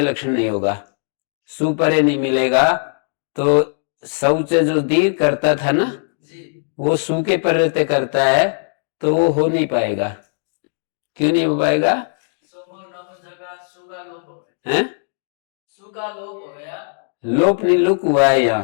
लक्षण नहीं होगा, सु परे नहीं मिलेगा, तो शौच जो दीर्घ करता था ना जी। वो सु के प्रत्यय करता है, तो वो हो नहीं पाएगा। क्यों नहीं हो पाएगा? हैं? सु का लोप हो गया, लोप नहीं, लुक हुआ है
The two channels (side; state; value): right; silent; digital silence